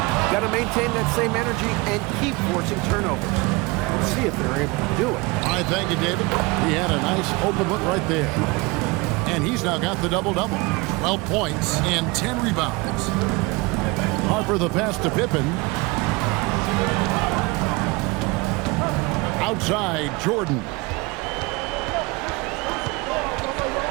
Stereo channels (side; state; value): left; quieter; 25.0 dB